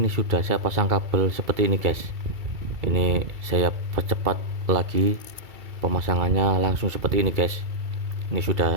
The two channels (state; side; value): late; left; 2.3 ms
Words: sudah saya pasang kabel seperti ini guys. Ini saya percepat lagi pemasangannya, langsung seperti ini guys. Ini